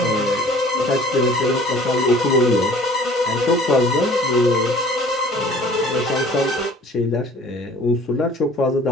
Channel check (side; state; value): both; normal; correlation 0.50